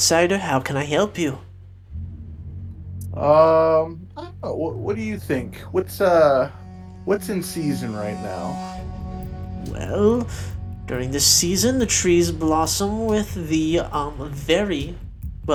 How can I help you? I don't know, what do you think? What's in season right now? Well, during this season, the trees blossom with the very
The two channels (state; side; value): identical; both; correlation 1.00